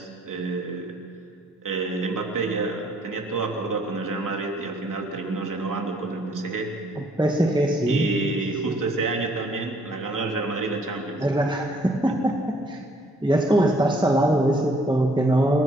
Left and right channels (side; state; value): both; normal; correlation 0.64